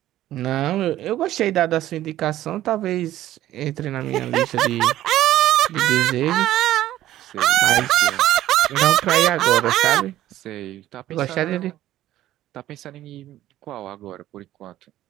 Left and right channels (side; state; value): left; quieter; 13.7 dB